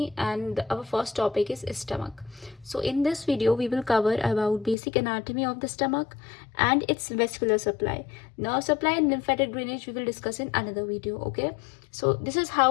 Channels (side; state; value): right; drops out; at 4.8 s